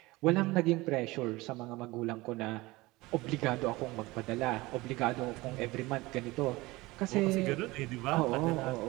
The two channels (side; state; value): left; quieter; 21.1 dB